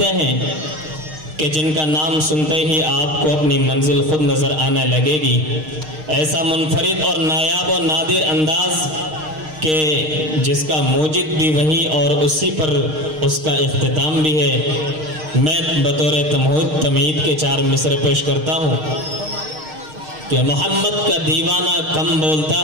ہیں کہ جن کا نام سنتے ہی آپ کو اپنی منزل خود نظر آنے لگے گی۔ ایسا منفرد اور نایاب و نادر انداز کہ جس کا موجد بھی وہی اور اسی پر اس کا اختتام بھی ہے۔ میں بطور تمہید کے 4 مصرے پیش کرتا ہوں کہ محمد کا دیوانہ کم بولتا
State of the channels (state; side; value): late; left; 6.5 ms